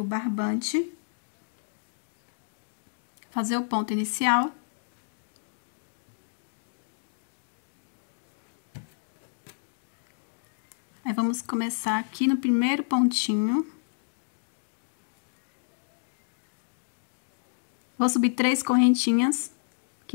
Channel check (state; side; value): silent; right; digital silence